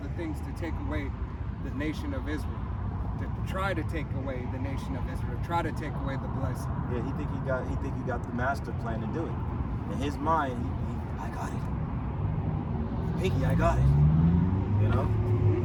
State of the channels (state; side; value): identical; both; correlation 1.00